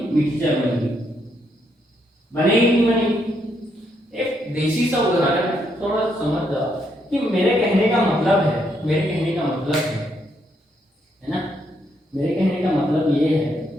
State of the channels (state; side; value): normal; both; correlation 0.76